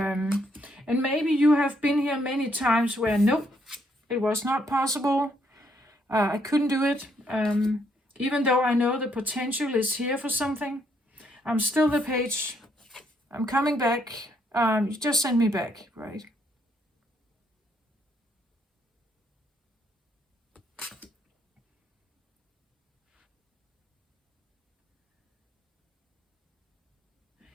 maybe you have been here many times where nope, it was not possible. I couldn't do it. Even though I know the potential is here for something, I'm still the page. I'm coming back. You just send me back, right?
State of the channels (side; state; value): both; normal; correlation 0.72